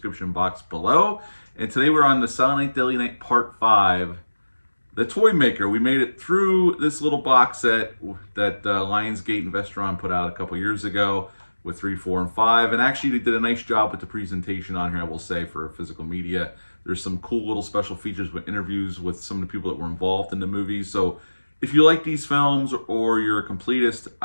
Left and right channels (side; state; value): both; inverted; correlation -1.00